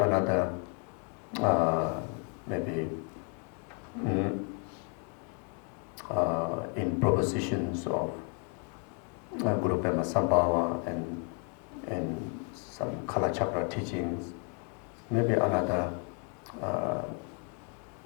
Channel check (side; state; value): right; quieter; 39.0 dB